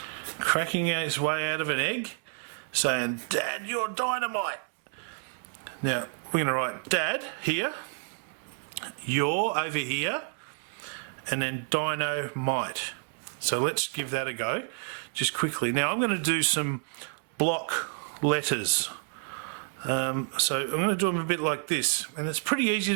cracking his way out of an egg, saying, "Dad, you're dynamite." Now we're going to write Dad here, you're over here, and then Dino-mite. So let's give that a go just quickly. Now I'm going to do some block letters. So I'm going to do them a bit like this, and it's pretty easy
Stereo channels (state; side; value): silent; left; 58 dB below the other